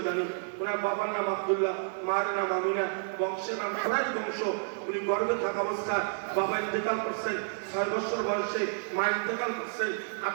জানি। ওনার বাবার নাম আব্দুল্লাহ, মার নাম আমিনা, বংশের নাম সবাই বংশ। উনি গর্ভে থাকা অবস্থায় বাবা ইন্তেকাল করছেন, 6 বছর বয়সে মা ইন্তেকাল করছেন,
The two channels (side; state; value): left; silent; digital silence